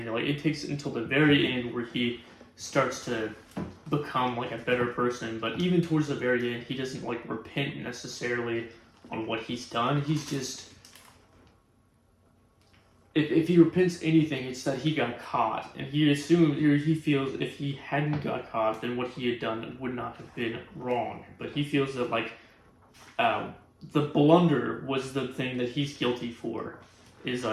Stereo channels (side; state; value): both; identical; correlation 1.00